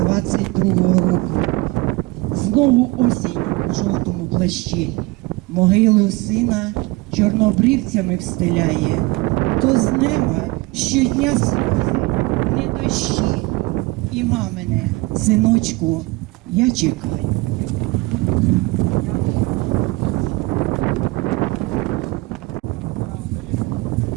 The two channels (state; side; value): quieter; left; 22.1 dB